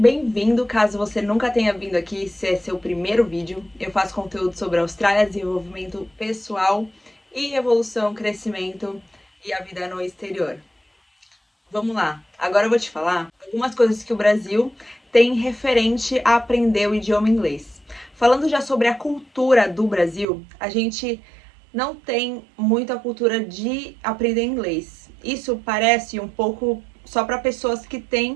caso você nunca tenha vindo aqui, se é seu primeiro vídeo. Eu faço conteúdo sobre Austrália, desenvolvimento pessoal e evolução, crescimento e a vida no exterior. Vamos lá, agora eu vou te falar algumas coisas que o Brasil tem referente a aprender o idioma inglês. Falando já sobre a cultura do Brasil, a gente não tem muita cultura de aprender inglês. Isso parece um pouco só para pessoas que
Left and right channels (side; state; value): left; drops out; at 20.2 s